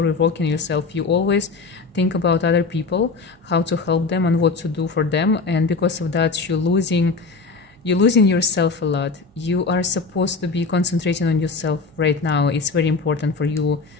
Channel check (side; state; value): right; quieter; 4.2 dB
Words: yourself. You always think about other people, how to help them and what to do for them, and because of that you're losing yourself a lot. You are supposed to be concentrating on yourself right now. It's very important for you,